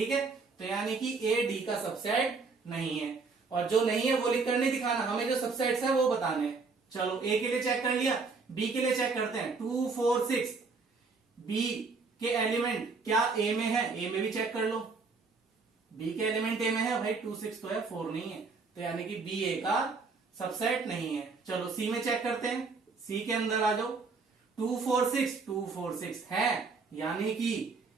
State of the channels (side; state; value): left; quieter; 4.4 dB